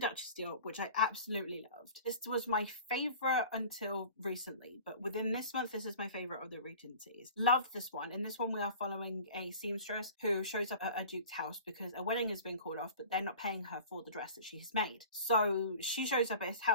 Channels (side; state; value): both; inverted; correlation -0.41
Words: Deal, which I absolutely loved. This was my favorite until recently, but within this month, this is my favorite of the Regencies. Loved this one. In this one, we are following a seamstress who shows up at a duke's house because a wedding has been called off, but they're not paying her for the dress that she has made. So she shows up at his